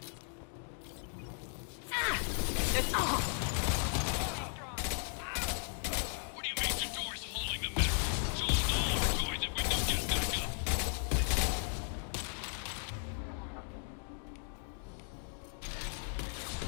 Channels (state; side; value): silent; right; 54 dB below the other